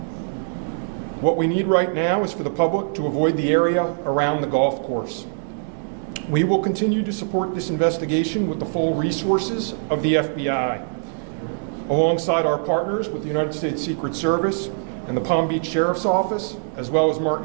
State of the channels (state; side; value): silent; left; digital silence